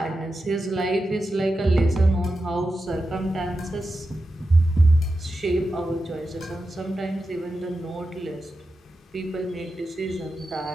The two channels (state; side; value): normal; both; correlation 0.90